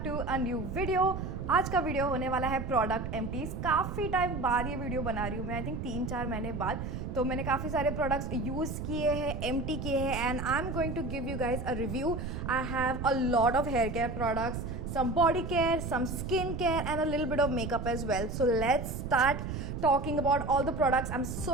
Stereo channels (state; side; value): noise; right; rumble, 5 dB below the sound